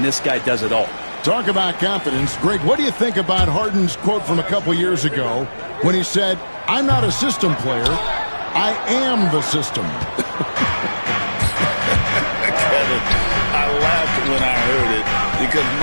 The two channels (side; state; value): both; inverted; correlation -1.00